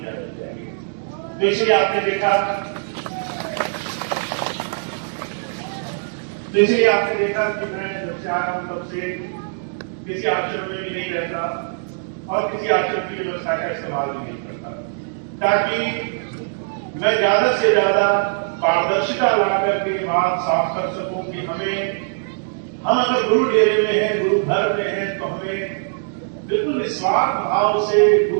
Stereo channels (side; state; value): left; silent; digital silence